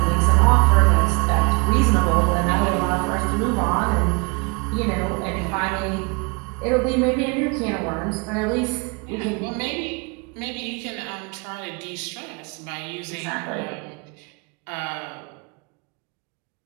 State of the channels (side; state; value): left; quieter; 31.1 dB